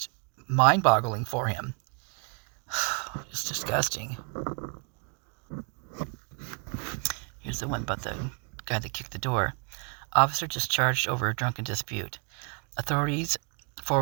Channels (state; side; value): quieter; left; 36.6 dB